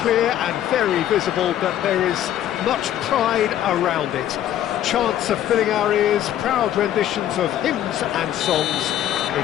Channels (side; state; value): right; quieter; 11.6 dB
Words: clear and very visible that there is much pride around it. Chants are filling our ears, proud renditions of hymns and songs.